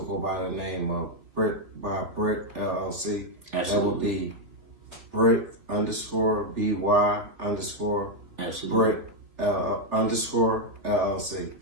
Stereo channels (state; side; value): late; left; 3.4 ms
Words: by the name of Brick LLC. Absolutely. That would be Brick _BY Absolutely. Brick _LLC.